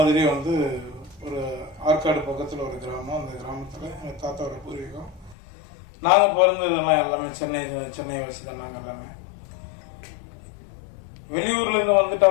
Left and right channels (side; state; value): right; drops out; at 5.4 s